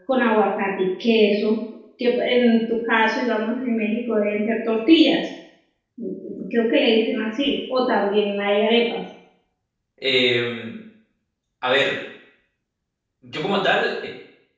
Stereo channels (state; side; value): identical; both; correlation 1.00